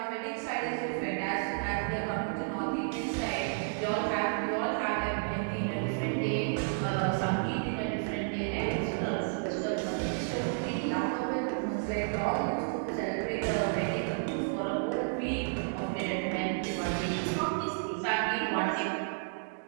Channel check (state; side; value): silent; left; digital silence